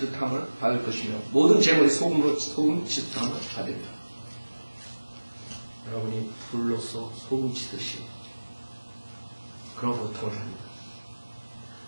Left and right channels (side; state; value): both; inverted; correlation -1.00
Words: 받을 것이며 모든 재물이 소금으로 소금 치듯함을 받으리라. 여러분이 불로서 소금 치듯이 그런 고통을 합니다.